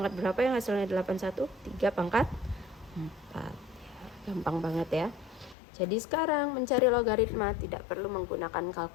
berapa yang hasilnya 81? 3 pangkat 4. Ya, gampang banget ya. Jadi sekarang mencari logaritma tidak perlu menggunakan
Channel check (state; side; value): drops out; right; at 5.6 s